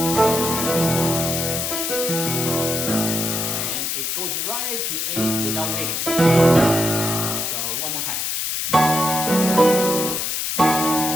and it goes right to A without waiting. So one more time.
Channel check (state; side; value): noise; left; hiss, 1 dB below the sound